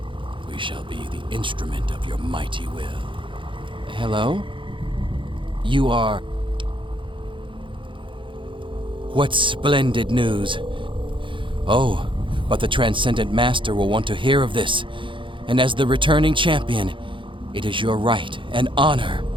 We shall be the instrument of your mighty will. Hello? You are... What splendid news. Oh, but the Transcendent Master will want to hear of this. And as the returning champion, it is your right and honor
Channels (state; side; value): late; left; 0.24 ms